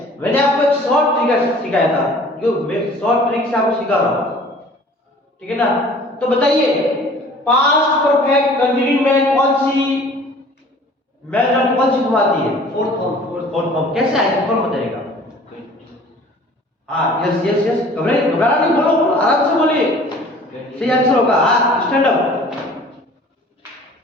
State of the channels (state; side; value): normal; both; correlation 0.49